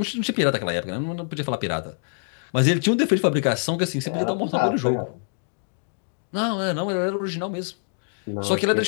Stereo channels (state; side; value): silent; right; digital silence